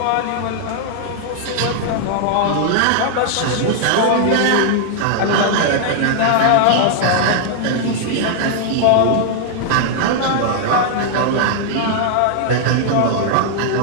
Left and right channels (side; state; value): both; different; correlation -0.01